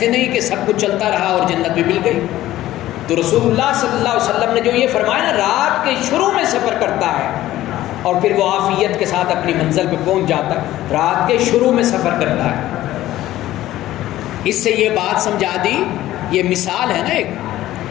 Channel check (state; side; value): quieter; right; 14.8 dB